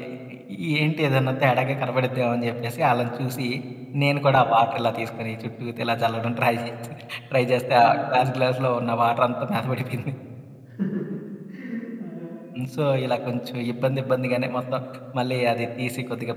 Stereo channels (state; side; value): identical; both; correlation 1.00